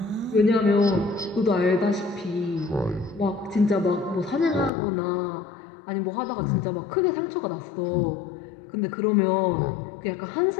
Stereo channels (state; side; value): drops out; right; at 4.7 s